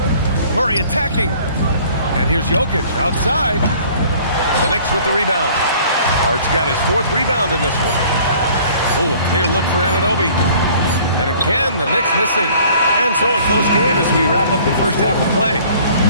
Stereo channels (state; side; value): inverted; both; correlation -0.53